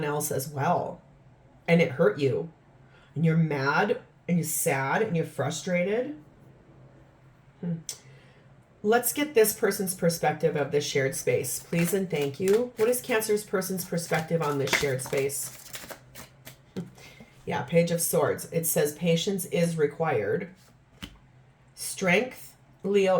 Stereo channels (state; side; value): identical; both; correlation 1.00